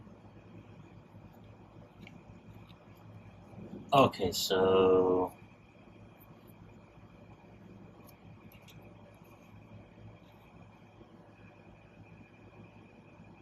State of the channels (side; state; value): both; identical; correlation 1.00